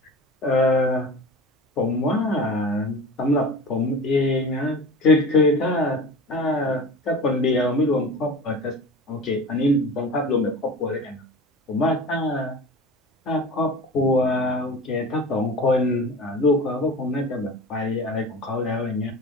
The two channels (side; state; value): both; normal; correlation 0.35